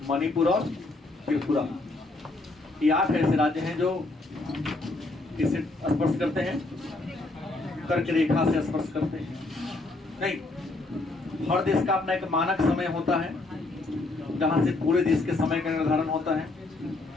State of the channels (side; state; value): right; quieter; 3.1 dB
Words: मणिपुर और त्रिपुरा। ये 8 ऐसे राज्य हैं जो इसे स्पर्श करते हैं, कर्क रेखा से स्पर्श करते हैं। नहीं, हर देश का अपना एक मानक समय होता है जहां से पूरे देश के समय का निर्धारण होता है।